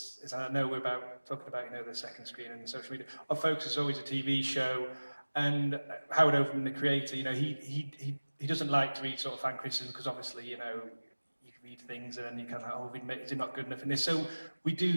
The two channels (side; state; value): both; inverted; correlation -1.00